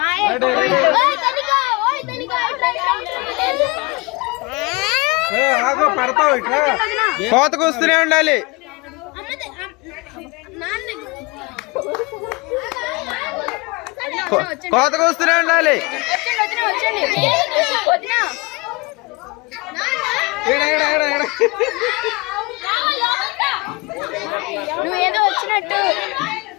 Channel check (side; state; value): right; quieter; 25.7 dB